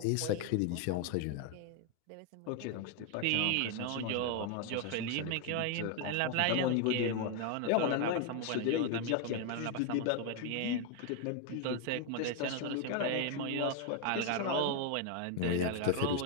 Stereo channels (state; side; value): different; both; correlation 0.01